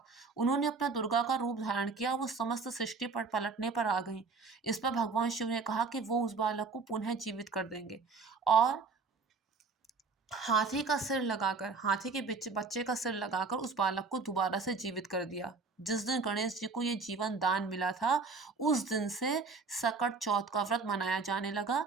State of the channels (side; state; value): left; quieter; 4.4 dB